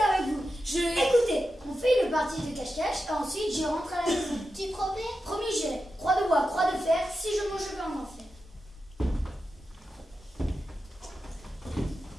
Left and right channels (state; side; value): normal; both; correlation 0.90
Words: avec vous. Je... Écoutez, on fait une partie de cache-cache et ensuite j'y rentre à la maison. Tu promets? Promis, j'irai. Croix de bois, croix de fer, si je mange, je vais en enfer.